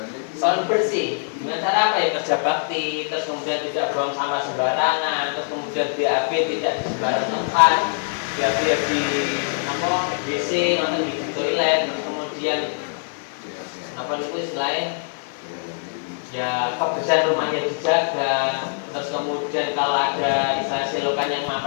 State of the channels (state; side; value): silent; right; 57 dB below the other